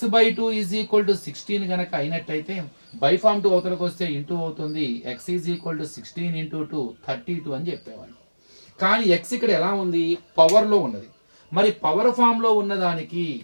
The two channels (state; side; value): inverted; both; correlation -1.00